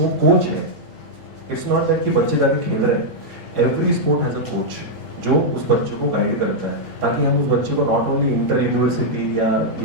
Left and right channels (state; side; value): normal; both; correlation -0.05